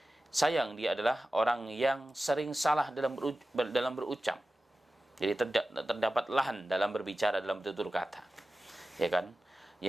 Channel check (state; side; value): normal; both; correlation 0.95